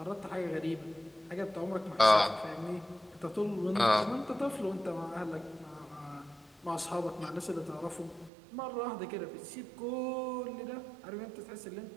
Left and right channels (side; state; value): left; drops out; at 8.3 s